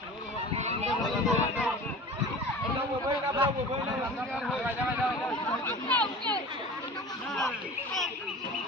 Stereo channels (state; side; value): normal; both; correlation 0.38